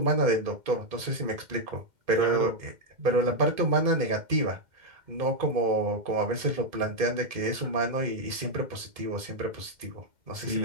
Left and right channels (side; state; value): left; late; 2.1 ms